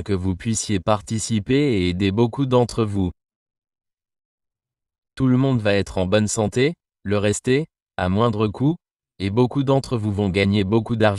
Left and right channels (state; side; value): identical; both; correlation 1.00